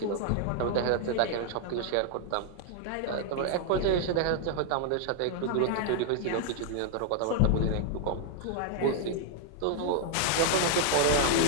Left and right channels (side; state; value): both; different; correlation 0.00